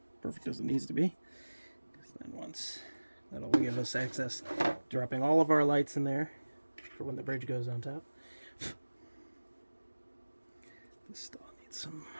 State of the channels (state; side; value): inverted; both; correlation -1.00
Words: perfect as it needs to be. Because then once that'll give us access, dropping all of our lights in there for when the bridge goes on top. This still needs some